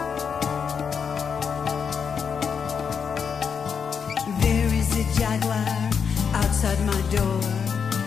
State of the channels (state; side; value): quieter; right; 6.6 dB